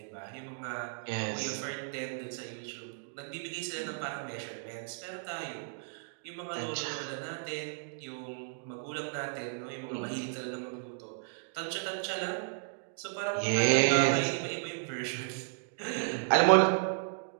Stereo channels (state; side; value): silent; left; digital silence